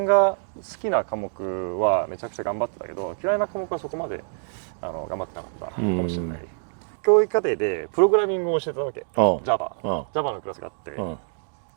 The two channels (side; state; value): left; silent; digital silence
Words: が好きな科目はめちゃくちゃ頑張ってたけど、嫌いな科目はそこまで頑張ってなかったかもしれない。教育課程でプログラミングを教えてたわけ。Java のクラスがあって、